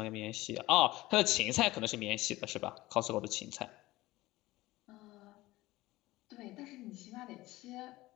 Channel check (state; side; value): quieter; right; 18.3 dB